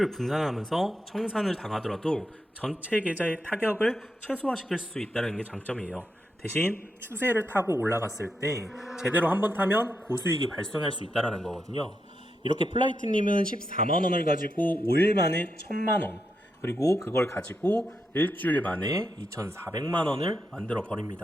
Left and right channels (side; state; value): both; normal; correlation 0.84